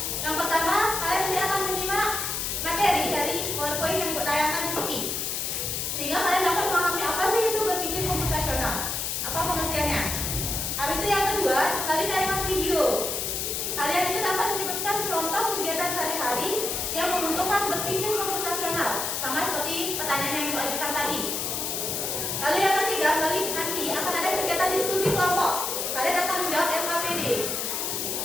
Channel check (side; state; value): left; noise; hiss, 1 dB below the sound